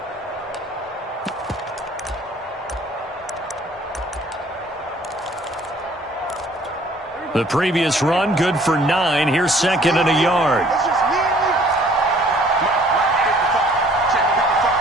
The previous run, good for 9. Here's 2nd and a yard.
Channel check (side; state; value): both; normal; correlation 0.57